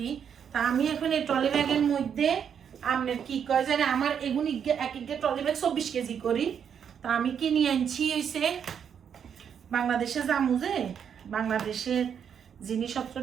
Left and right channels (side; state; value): left; quieter; 7.9 dB